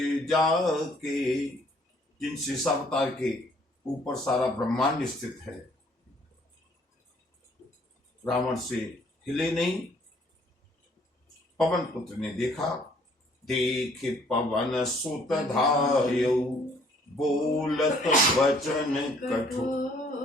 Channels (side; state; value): both; normal; correlation 0.61